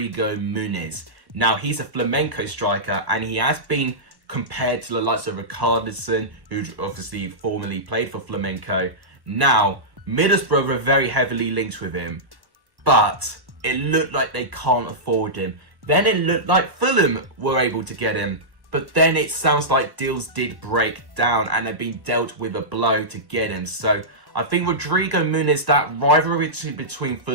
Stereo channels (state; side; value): late; left; 1.2 ms